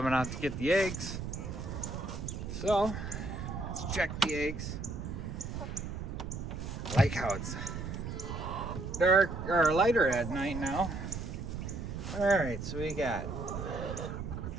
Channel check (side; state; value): right; noise; rumble, 6 dB below the sound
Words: out to get the eggs. So, let's check the eggs. I like how it's dark or lighter at night now. All right, so we got